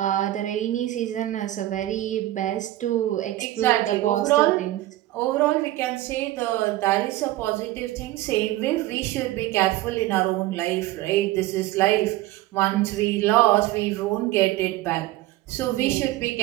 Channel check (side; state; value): left; quieter; 16.0 dB